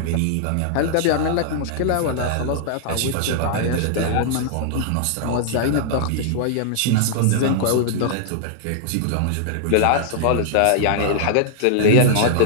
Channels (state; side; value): different; both; correlation -0.01